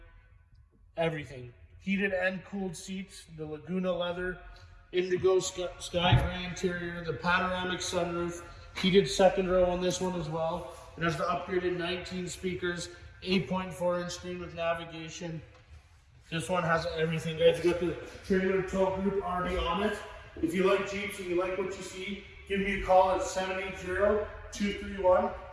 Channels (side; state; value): both; identical; correlation 1.00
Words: everything. Heated and cooled seats, the Laguna leather, Indigo Sky Gray interior, the Panoramic sunroof, heated second row on this one as well. It has the upgraded 19 speakers, 8.4-inch screen with navigation. This one has everything, guys. You got the trailer tow group already on it. If you like Jeeps and you like what you see, give me a call at